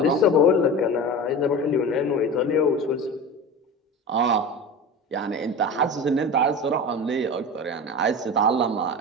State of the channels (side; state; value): both; normal; correlation 0.30